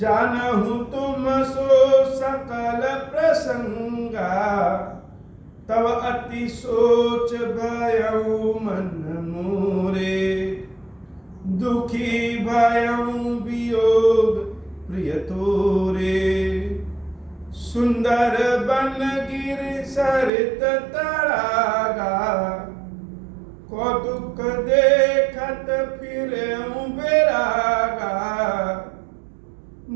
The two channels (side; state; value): left; drops out; at 20.3 s